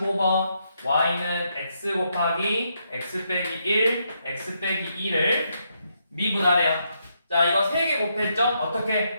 y는 x 곱하기 x 빼기 1, x 빼기 2를 미분하래요. 자, 이거 3개 곱했죠?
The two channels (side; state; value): both; inverted; correlation -0.79